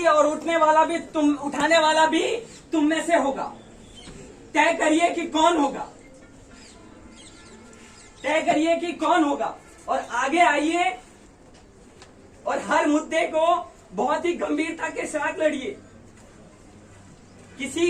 और उठने वाला भी तुम, उठाने वाला भी तुम में से होगा। तय करिए कि कौन होगा, तय करिए कि कौन होगा, और आगे आइए और हर मुद्दे को बहुत ही गंभीरता के साथ लड़िए।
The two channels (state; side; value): identical; both; correlation 1.00